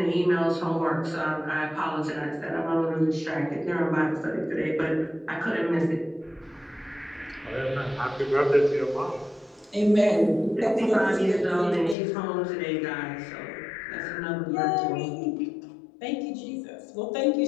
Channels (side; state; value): right; drops out; at 12.0 s